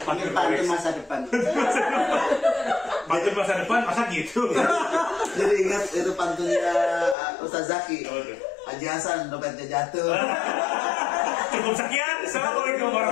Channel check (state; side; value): drops out; right; at 7.2 s